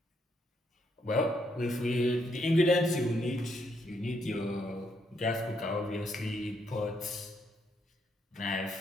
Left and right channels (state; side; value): normal; both; correlation 0.75